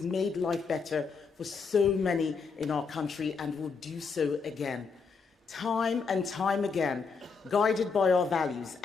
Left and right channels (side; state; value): right; quieter; 5.1 dB